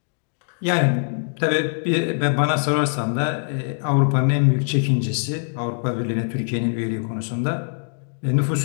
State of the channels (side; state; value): right; silent; digital silence